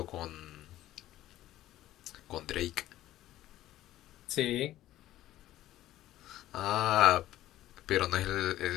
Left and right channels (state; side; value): quieter; right; 14.3 dB